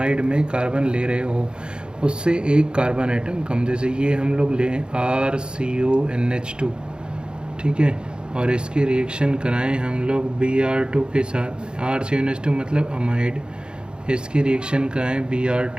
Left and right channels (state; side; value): late; left; 0.050 ms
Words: में कार्बन ले रहे हो उससे 1 कार्बन आइटम कम। जैसे ये हम लोग लें RCONH2, ठीक है, और इसकी रिएक्शन कराएं हम लोग Br2 के साथ। RCONH2 मतलब अमाइड, इसकी रिएक्शन कराएं